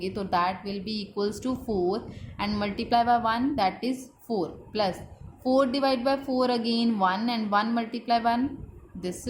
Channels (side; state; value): both; identical; correlation 1.00